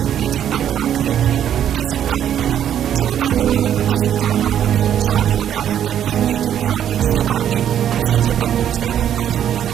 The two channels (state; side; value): quieter; left; 10.0 dB